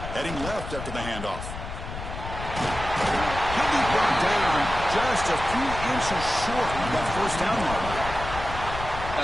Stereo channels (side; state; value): left; noise; rumble, 8 dB below the sound